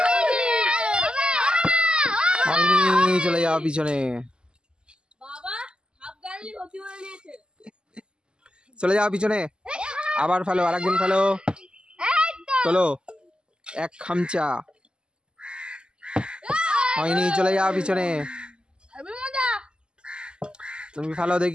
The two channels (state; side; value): late; left; 0.048 ms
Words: হয়নি, চলে যাও পিছনে, চলে যাও পিছনে, আবার ফেলো, আরেকদিন ফেলো, তোলো, এক খামচা। হয়নি, চলে যাও পিছনে, তুমি ফেলো